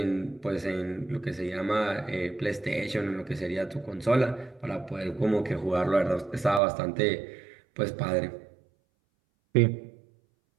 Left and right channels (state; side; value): drops out; left; at 6.6 s